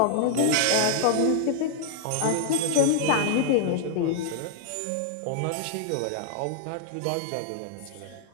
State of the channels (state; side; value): different; both; correlation -0.01